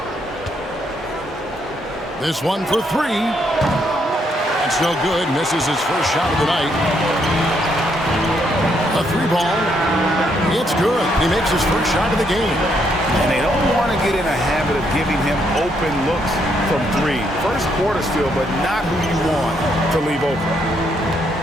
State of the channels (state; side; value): normal; both; correlation 0.74